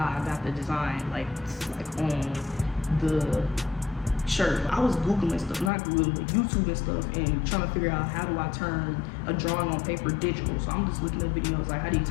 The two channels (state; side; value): drops out; right; at 5.7 s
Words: I got the design, like on the shirt. I was Googling stuff, not Googling, but YouTube and stuff, and trying to figure out how do I turn a drawing on paper digital. So I'm just looking at videos like how do you